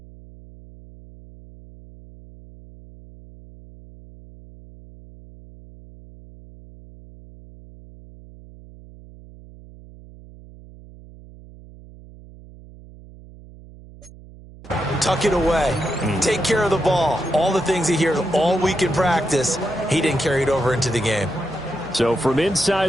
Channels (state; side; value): noise; right; hum, 20 dB below the sound